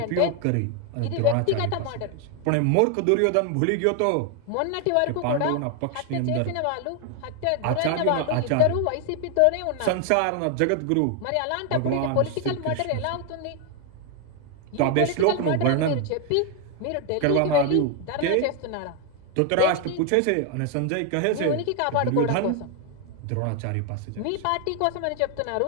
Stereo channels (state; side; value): different; both; correlation 0.01